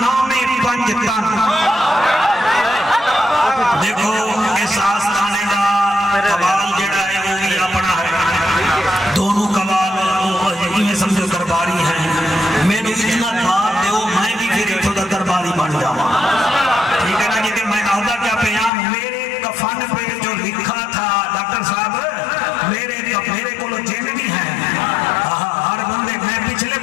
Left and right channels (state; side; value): drops out; right; at 18.7 s